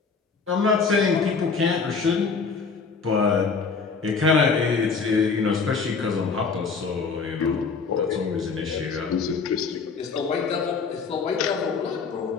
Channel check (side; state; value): right; quieter; 5.0 dB